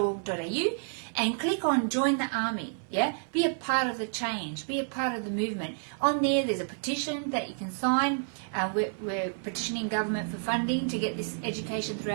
and click on Join the Army. Yeah, be a part of the change, be a part of the movement. On there's a petition that you can sign. We're petitioning government for funding to get this education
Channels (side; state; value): left; silent; 58 dB below the other